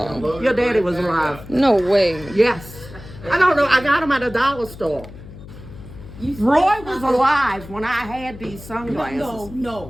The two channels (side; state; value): left; noise; hum, 16 dB below the sound